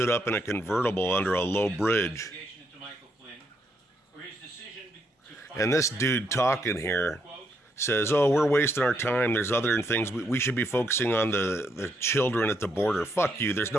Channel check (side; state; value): both; normal; correlation 0.76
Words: up in a convertible under a low bridge. And this dude talking here says, oh, we're wasting our time. There's other things. We should be focusing on the children at the border. Fuck you. There's